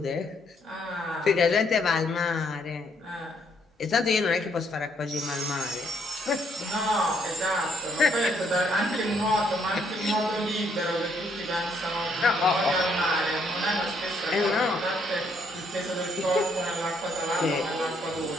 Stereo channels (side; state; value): both; normal; correlation 0.70